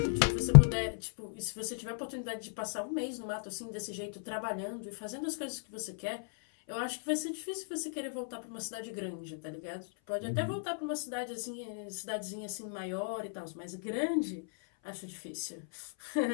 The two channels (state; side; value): silent; right; 55 dB below the other